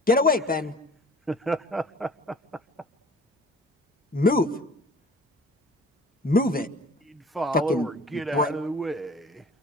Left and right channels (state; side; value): normal; both; correlation 0.47